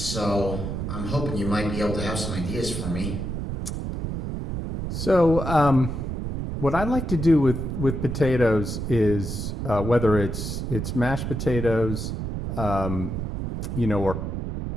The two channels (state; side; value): noise; right; rumble, 4 dB below the sound